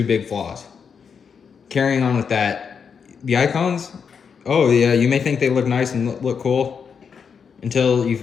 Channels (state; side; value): quieter; right; 6.4 dB